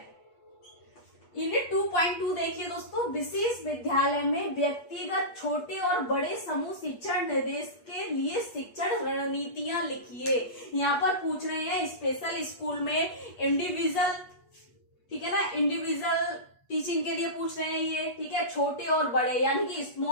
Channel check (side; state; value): right; late; 8.3 ms